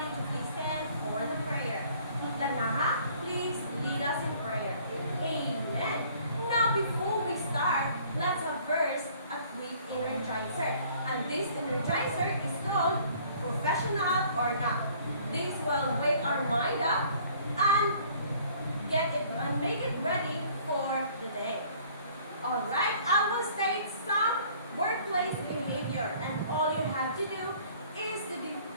to please stand for the prayer. Lanaha, please lead us in prayer. Amen. Now, before we start, let's have first a quick energizer. And this energizer is called Professional or Not. This will wake our mind up and make it ready for the day. Alright, I will state some workplace behavior, and all you have to do is to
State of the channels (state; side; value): inverted; both; correlation -0.56